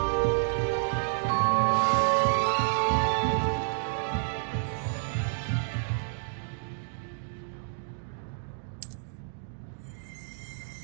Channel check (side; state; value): left; silent; digital silence